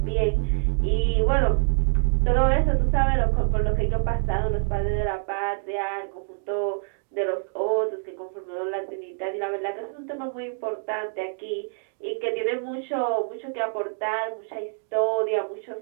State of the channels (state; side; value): silent; left; digital silence